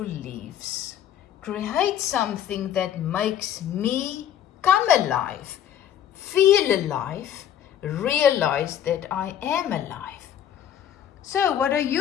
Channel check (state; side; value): quieter; right; 10.2 dB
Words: leaves. Create something that makes me come alive, feel alive, realize that I am alive. So what are